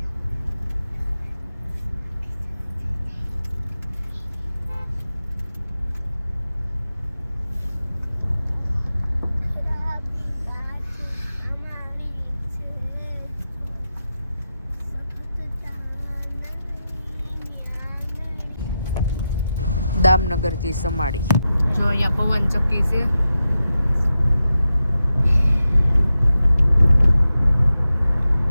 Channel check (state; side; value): inverted; both; correlation -0.90